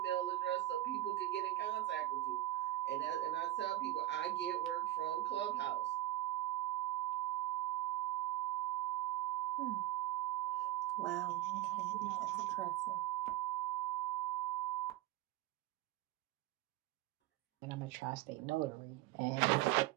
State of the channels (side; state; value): left; quieter; 15.3 dB